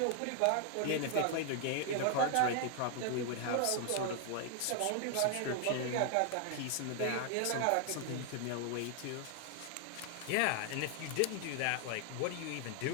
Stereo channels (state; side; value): different; both; correlation 0.00